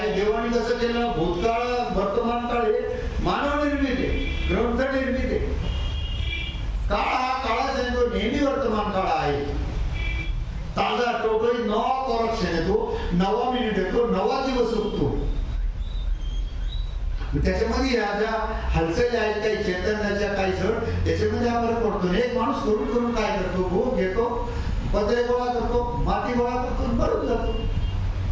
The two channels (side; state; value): both; identical; correlation 1.00